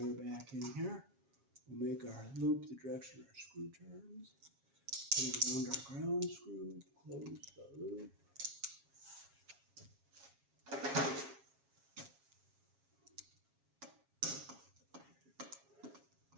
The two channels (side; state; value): left; late; 7.4 ms